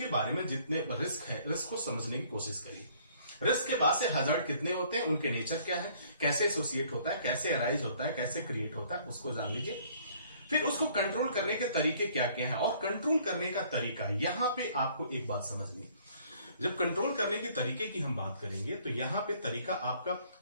बारे में, जितने रिस्क है, रिस्क को समझने की कोशिश करिए। रिस्क के बाद से हजार्ड कितने होते हैं, उनके नेचर क्या है, कैसे एसोसिएट होता है, कैसे अराइज होता है, कैसे क्रिएट होता है, उसको जान लीजिए। फिर उसको कंट्रोल करने के तरीके क्या क्या है, और कंट्रोल करने का तरीका, यहां पे आपको एक बात समझनी है। जब कंट्रोल करने के तरीके की हम बात करेंगे तो यहां पे तरीका आपका,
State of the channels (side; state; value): both; inverted; correlation -0.60